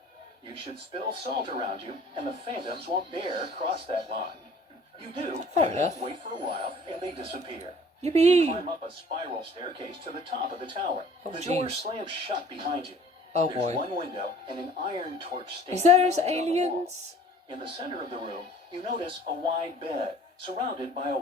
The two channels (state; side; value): normal; both; correlation 0.51